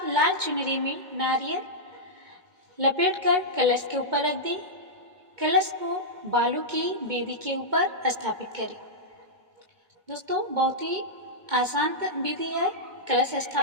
लाल चुनरी में नारियल लपेटकर कलश के ऊपर रख दें। कलश को बालू की वेदी के ऊपर स्थापित करें। दोस्तों, बहुत ही आसान विधि है कलश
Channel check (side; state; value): left; late; 2.2 ms